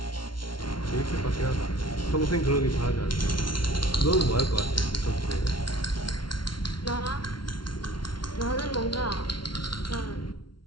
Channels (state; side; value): late; right; 0.73 ms